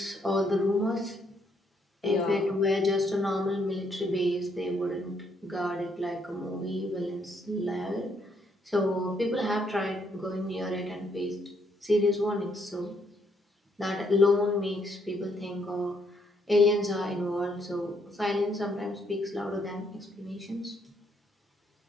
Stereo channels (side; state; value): both; normal; correlation 0.72